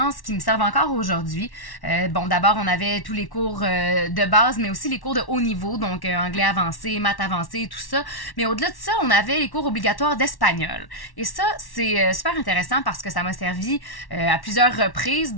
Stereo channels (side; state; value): right; late; 1.1 ms